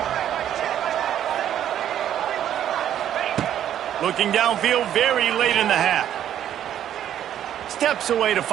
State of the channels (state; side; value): quieter; left; 10.7 dB